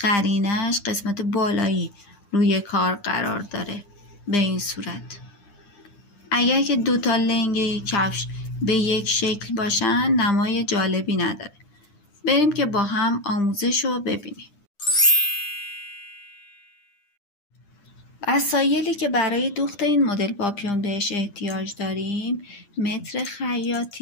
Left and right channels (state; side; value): late; right; 9.9 ms